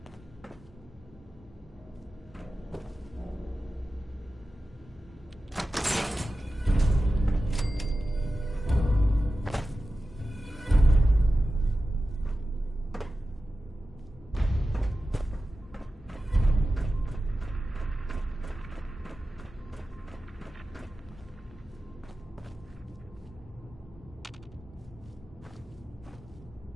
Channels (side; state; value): both; normal; correlation 0.93